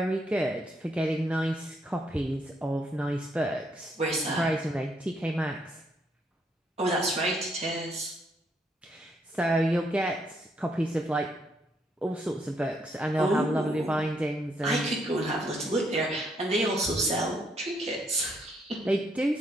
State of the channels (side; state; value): both; normal; correlation 0.73